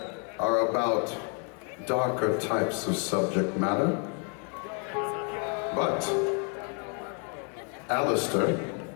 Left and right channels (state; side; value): quieter; right; 39.1 dB